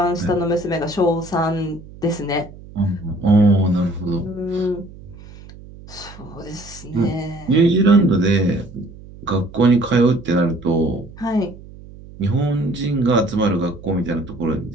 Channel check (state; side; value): noise; right; hum, 18 dB below the sound